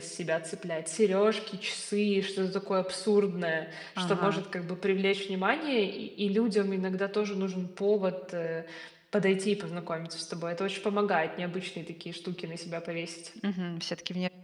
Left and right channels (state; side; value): identical; both; correlation 1.00